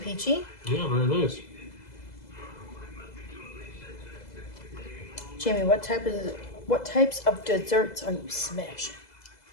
Yeah, very nice. Jamie, what types of desserts are you smashing?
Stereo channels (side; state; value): right; late; 2.0 ms